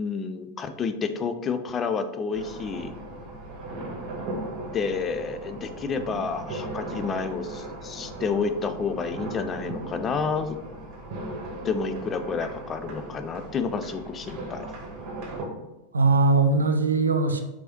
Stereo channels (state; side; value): normal; both; correlation 0.04